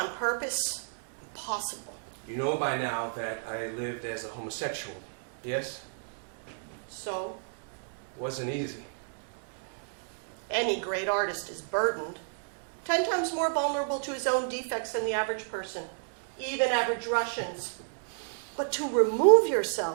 purpose? Impossible. You know by now that I lived as a homosexual, yes? So? Wasn't easy. Any great artist is burdened. 10 times more vulnerable to his own defects than the average person, even average Russians. But to remove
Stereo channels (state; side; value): silent; left; digital silence